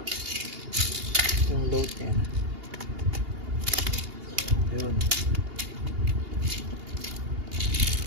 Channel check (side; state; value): left; late; 2.8 ms